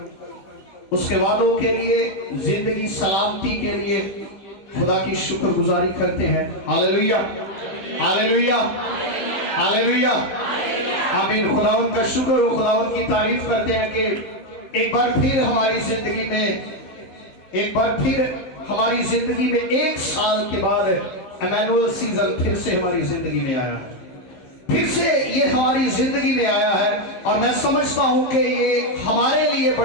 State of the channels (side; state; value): right; late; 16 ms